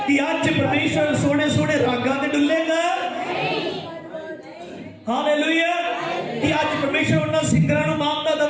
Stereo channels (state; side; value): identical; both; correlation 1.00